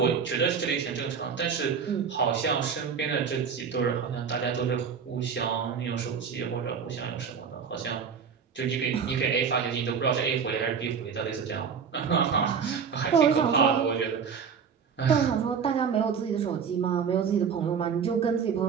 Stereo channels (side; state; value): left; quieter; 6.6 dB